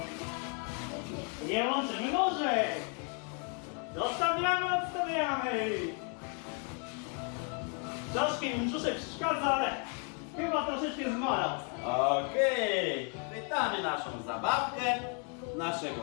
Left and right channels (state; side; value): quieter; right; 39.9 dB